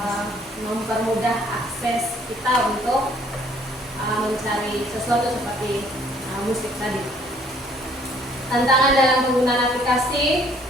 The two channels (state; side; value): normal; both; correlation 0.60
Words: mempermudah akses kita untuk mencari sesuatu seperti musik tadi. Tantangan dalam penggunaan aplikasi